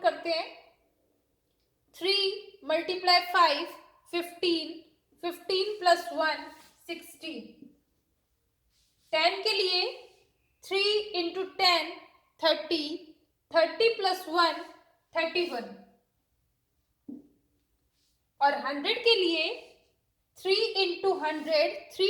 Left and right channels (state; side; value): identical; both; correlation 1.00